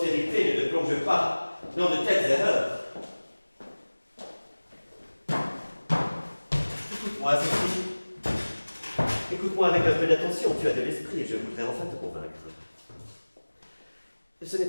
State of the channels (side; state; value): both; inverted; correlation -1.00